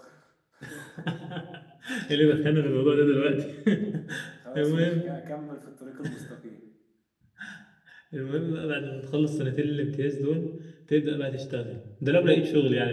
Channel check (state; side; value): identical; both; correlation 1.00